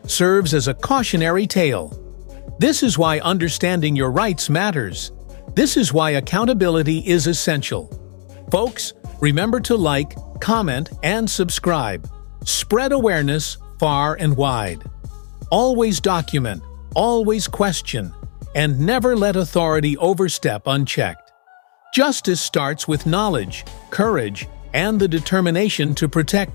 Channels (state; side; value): silent; right; digital silence